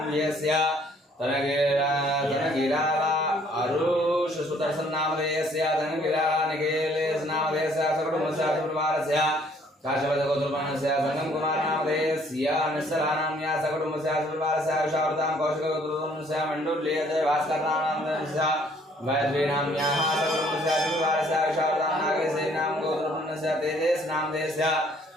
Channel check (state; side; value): normal; both; correlation 0.61